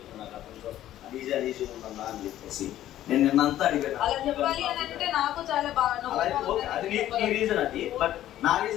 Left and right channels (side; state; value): right; quieter; 12.9 dB